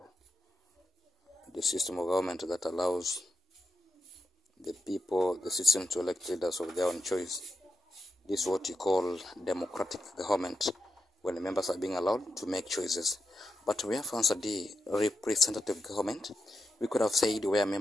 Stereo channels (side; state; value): both; normal; correlation 0.86